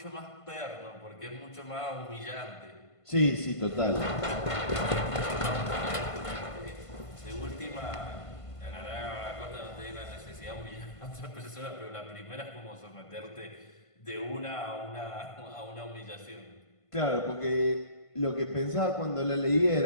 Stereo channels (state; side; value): late; right; 1.5 ms